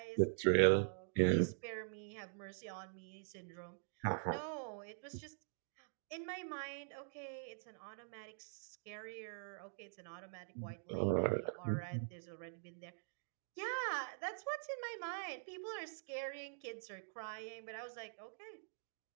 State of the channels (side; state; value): left; silent; digital silence